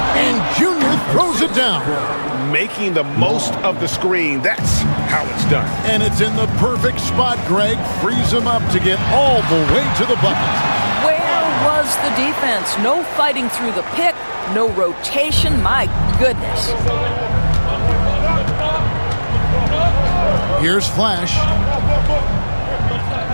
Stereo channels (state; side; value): inverted; both; correlation -1.00